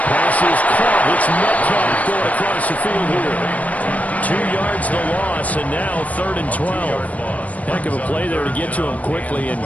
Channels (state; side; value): late; right; 0.070 ms